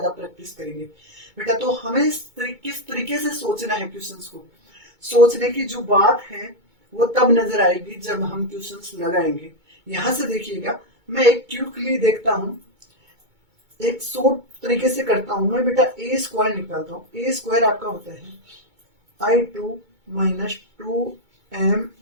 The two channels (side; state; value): left; late; 2.2 ms